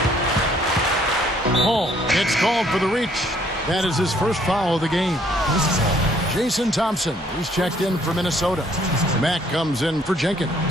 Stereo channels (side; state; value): both; normal; correlation 0.64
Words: Home. It's called for the reach. That is his first foul of the game. Jason Thompson, he's checked in for Minnesota. Mack comes in for Jenkins.